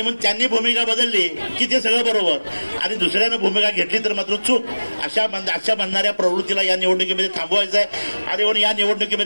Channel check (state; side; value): inverted; both; correlation -1.00